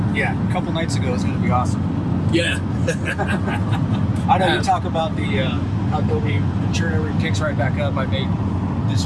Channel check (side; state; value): both; identical; correlation 1.00